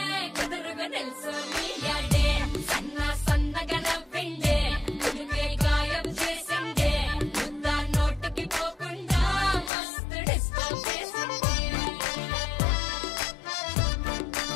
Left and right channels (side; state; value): right; drops out; at 9.7 s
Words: కుదురుగా నిల్సోనియాడే సన్న సన్నగా నవ్విండే కుడికే గాయం చేసిందే ముద్ద నోటికి పోకుండా మస్తు డిస్టర్బ్ చేసిందే